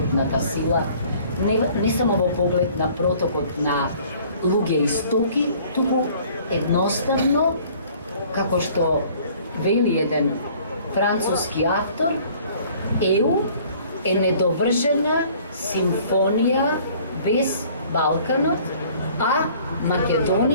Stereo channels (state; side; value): inverted; both; correlation -0.54